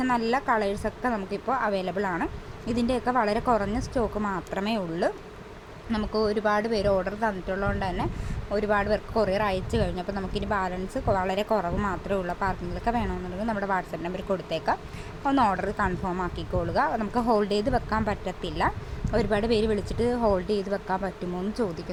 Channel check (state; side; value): identical; both; correlation 1.00